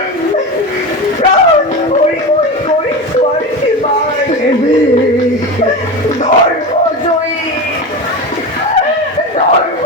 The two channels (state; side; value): normal; both; correlation 0.23